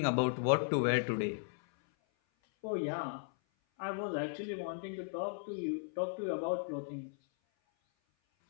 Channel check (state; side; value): silent; right; 54 dB below the other